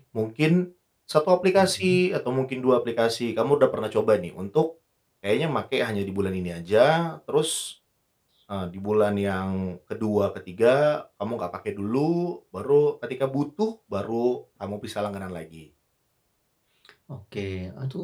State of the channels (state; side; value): identical; both; correlation 1.00